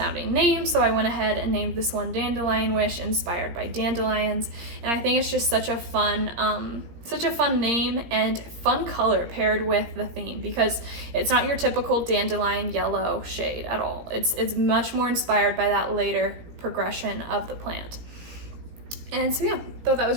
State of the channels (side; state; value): left; late; 17 ms